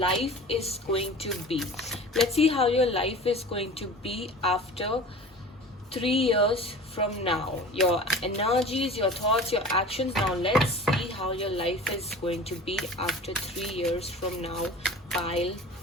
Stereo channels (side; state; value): both; normal; correlation 0.39